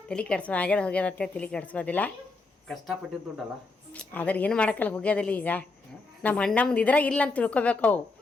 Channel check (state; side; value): quieter; right; 3.6 dB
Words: ತಲೆ ಕೆಡ್ಸೋ ಆಗ್ಯದ ಹೋಗ್ಯದ ಅಂತೇಳಿ ತಲೆ ಕೆಡ್ಸ್ಕೋದಿಲ್ಲ ಕಷ್ಟಪಟ್ಟಿದ್ದು ದುಡ್ಡಲ್ಲ ಆದ್ರೆ ಏನು ಮಾಡೋಕ್ಕಲ್ಲ ಹೋಗ್ಯದಿಲ್ಲ ಈಗ ನಮ್ಮ ಅಣ್ಣಮ್ದು ಇದ್ರಾಗ ಇಲ್ಲ ಅಂತ ತಿಳ್ಕೊಬೇಕು ಅವು